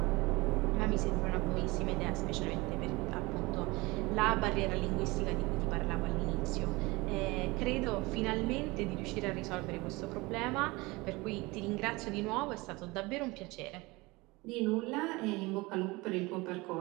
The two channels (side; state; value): left; quieter; 23.1 dB